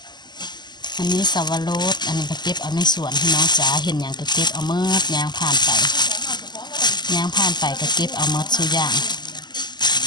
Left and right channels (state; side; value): late; right; 0.21 ms